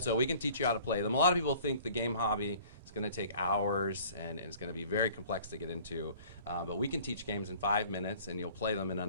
so we can teach you how to play them. A lot of people think the game hobby is going to take hours and it's going to be very complex to get into. But we can teach games in 5 minutes and you'll play them in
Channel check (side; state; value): both; inverted; correlation -0.50